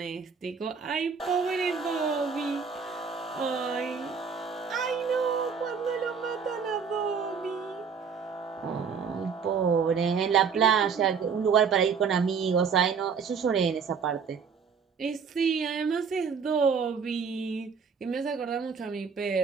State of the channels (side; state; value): left; quieter; 6.1 dB